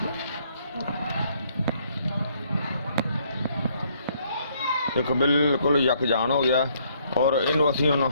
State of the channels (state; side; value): inverted; both; correlation -0.67